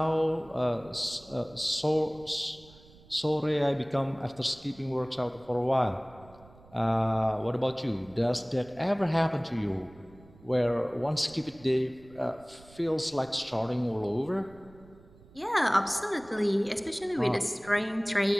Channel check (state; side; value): noise; right; rumble, 24 dB below the sound